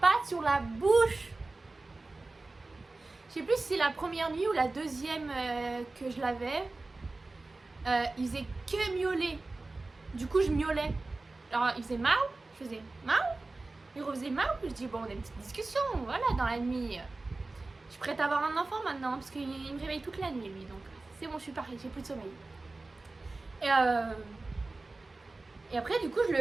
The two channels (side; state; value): left; quieter; 3.3 dB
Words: patte sur la bouche. Je sais plus si c'est la première nuit ou la deuxième que je l'avais. Il faisait que miauler. Du coup, je miaulais. Alors, il faisait miaou, je faisais miaou. Il refaisait miaou. Je dis, bon, on a une petite discussion, voilà, dans la nuit. Je suis prête à avoir un enfant maintenant, parce qu'il me réveille toute la nuit, lui. Donc, c'est bon, je suis parée, j'ai plus de sommeil. Et après, du coup,